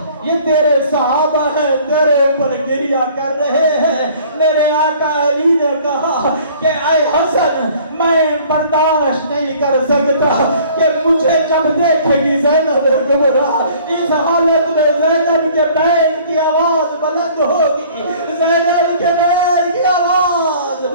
یہ تیرے صحابہ ہیں تیرے اوپر گریہ کر رہے ہیں. میرے آقا علی نے کہا کہ اے حسن میں برداشت نہیں کر سکتا کہ مجھے جب دیکھے گی زینب کبریٰ اس حالت میں زینب کے بین کی آواز بلند ہوگی, زینب کے بین کی آواز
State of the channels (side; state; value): both; inverted; correlation -0.53